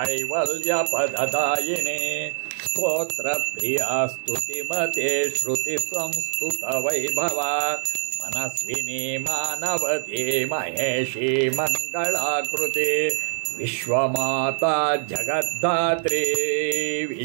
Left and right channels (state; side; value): silent; left; digital silence